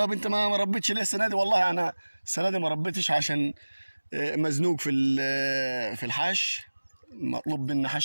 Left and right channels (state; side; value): inverted; both; correlation -1.00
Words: انت ما ربيتش ليه السنه دي؟ والله انا السنه دي ما ربيتش عشان مزنوق في الحش، مطلوب مني